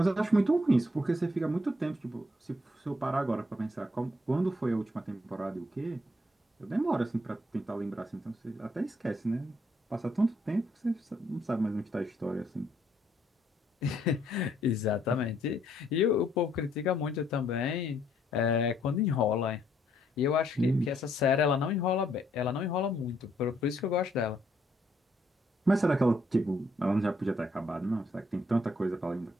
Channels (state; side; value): normal; both; correlation 0.70